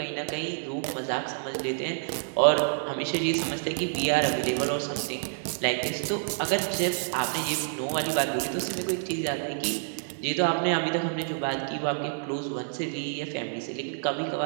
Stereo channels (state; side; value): silent; left; 59 dB below the other